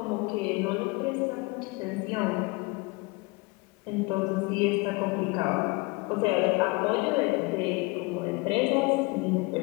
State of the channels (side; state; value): right; quieter; 25.7 dB